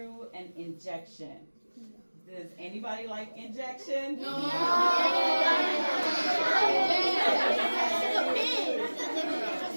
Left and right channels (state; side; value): inverted; both; correlation -1.00